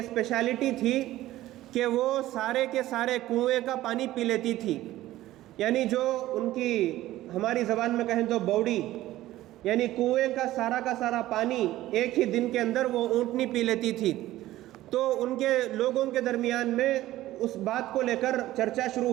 تھی کہ وہ سارے کے سارے کنویں کا پانی پی لیتی تھی، یعنی جو ان کی ہماری زبان میں کہیں تو بوڑی، یعنی کنویں کا سارا پانی ایک ہی دن کے اندر وہ اونٹنی پی لیتی تھی۔ تو ان کے لوگوں کے درمیان میں اس بات کو لے کر چرچا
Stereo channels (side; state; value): left; quieter; 15.4 dB